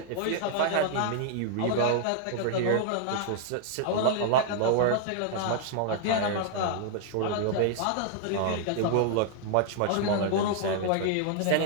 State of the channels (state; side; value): different; both; correlation -0.01